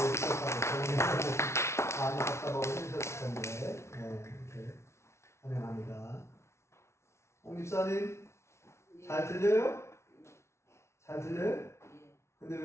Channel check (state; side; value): late; right; 0.13 ms